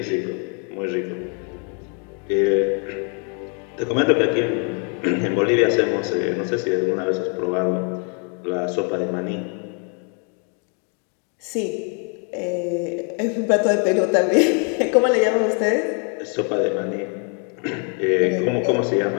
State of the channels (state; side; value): quieter; right; 39.2 dB